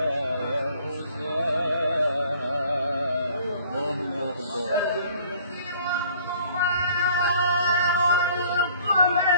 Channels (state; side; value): inverted; both; correlation -0.55